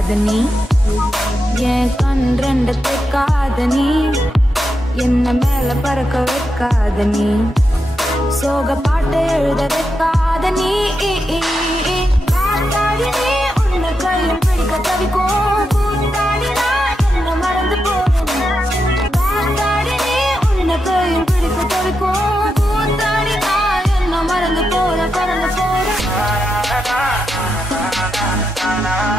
நீ என் கண் ரெண்டு கேட்காத நீ என்ன மேல பறக்க வைக்காத நீ சோக பாட்டு எழுத வைக்காத நீ காத்தாடி நீ உன்னை கையில் பிடிக்க தவிக்கும் கூத்தாடினா என்ன மறந்து போறேன் காத்தாடி நீ உன்னை கையில் பிடிக்க தவிக்கும் கூத்தாடினா என்ன மறந்து போற பறந்து போற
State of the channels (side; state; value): both; normal; correlation 0.86